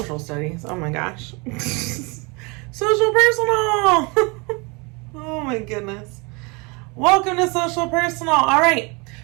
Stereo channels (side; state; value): left; quieter; 28.9 dB